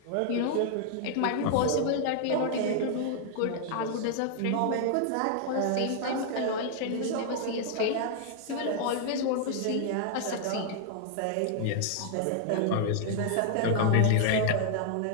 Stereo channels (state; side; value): different; both; correlation 0.00